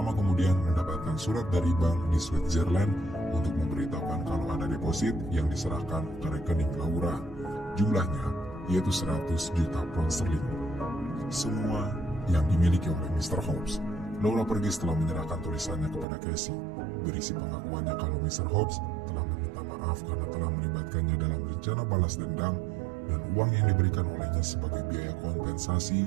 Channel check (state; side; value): drops out; left; at 16.1 s